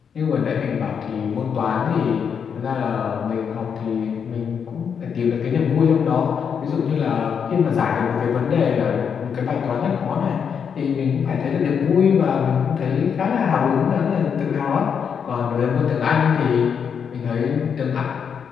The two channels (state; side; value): quieter; right; 7.1 dB